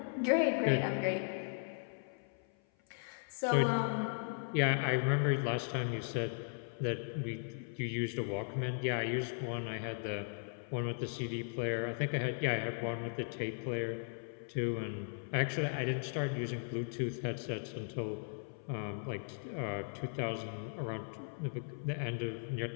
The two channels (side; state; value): right; silent; 53 dB below the other